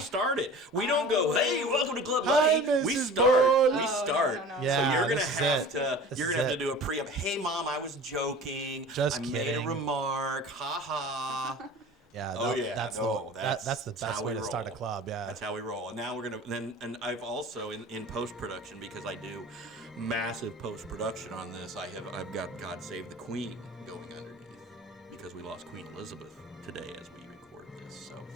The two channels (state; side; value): normal; both; correlation 0.40